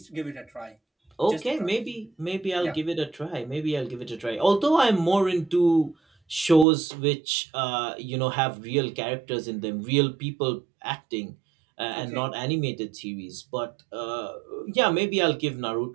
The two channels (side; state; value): left; drops out; at 6.7 s